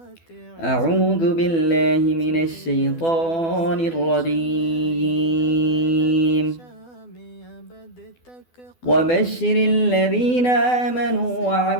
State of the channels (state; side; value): late; right; 12 ms